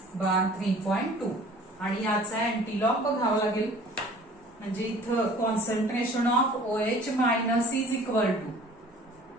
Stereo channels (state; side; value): normal; both; correlation 0.49